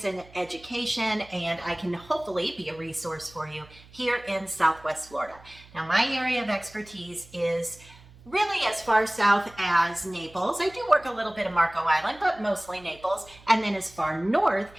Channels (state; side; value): noise; right; hum, 23 dB below the sound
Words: and education, and I can hopefully be a resource for you here in Southwest Florida. Now, my area of expertise is really as far south as Naples. I do work a little bit of Marco Island, but mostly Naples, and then as far north